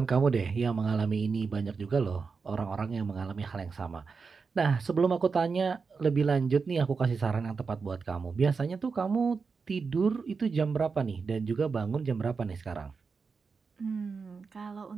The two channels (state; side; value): quieter; left; 5.0 dB